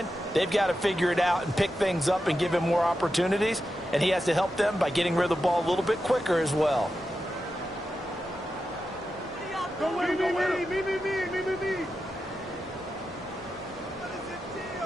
they've got to figure it out and pick things up and give him more opportunities, and he has to help them by getting rid of the ball a little bit quicker as well.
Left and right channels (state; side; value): normal; both; correlation 0.89